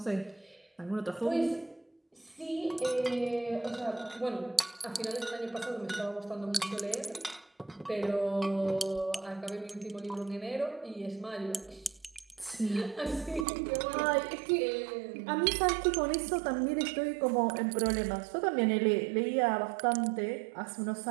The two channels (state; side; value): drops out; left; at 13.5 s